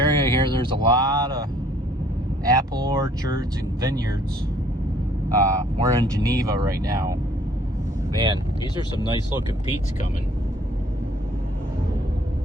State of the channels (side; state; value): both; normal; correlation 0.60